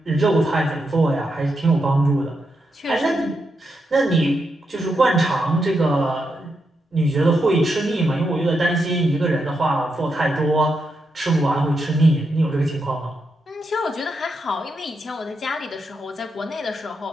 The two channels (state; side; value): normal; both; correlation 0.84